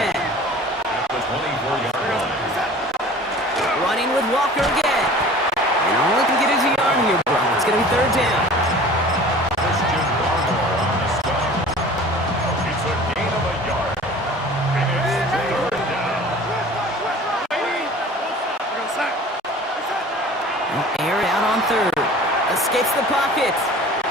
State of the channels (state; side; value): normal; both; correlation 0.44